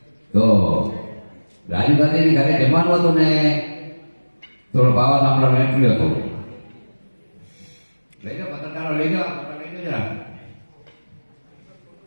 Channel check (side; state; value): both; inverted; correlation -1.00